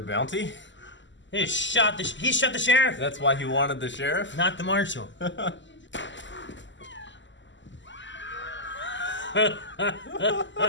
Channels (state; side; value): late; right; 0.54 ms